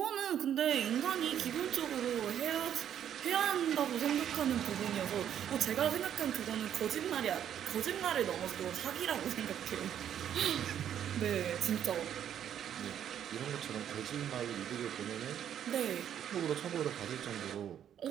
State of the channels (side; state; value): left; quieter; 9.7 dB